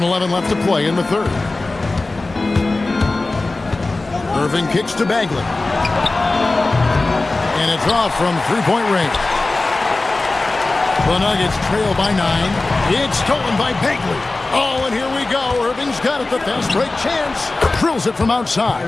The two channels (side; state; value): right; quieter; 3.2 dB